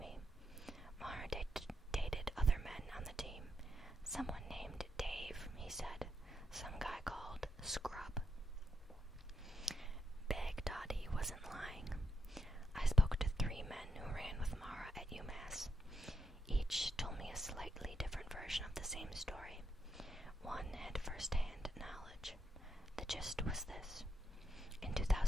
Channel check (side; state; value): both; normal; correlation 0.81